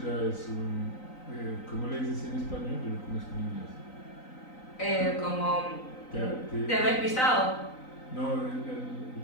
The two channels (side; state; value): right; late; 3.9 ms